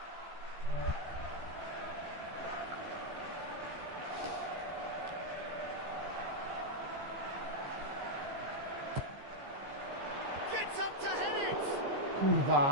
Gets up to head it!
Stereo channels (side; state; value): left; late; 15 ms